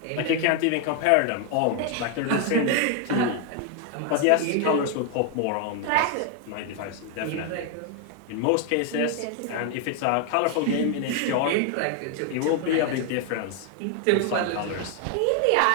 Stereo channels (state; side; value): different; both; correlation 0.01